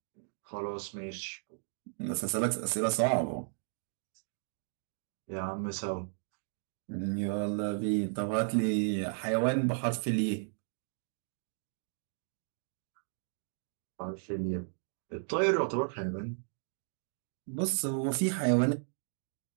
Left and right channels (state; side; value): silent; left; digital silence